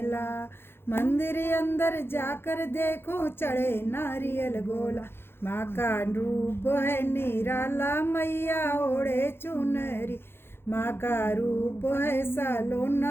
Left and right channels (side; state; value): right; late; 0.11 ms